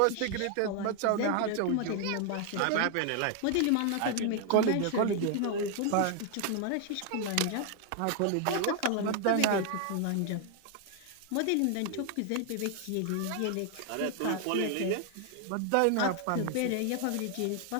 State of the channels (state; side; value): different; both; correlation 0.00